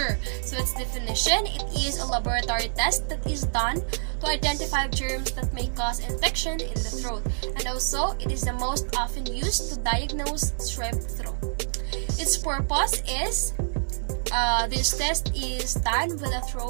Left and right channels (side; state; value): left; silent; digital silence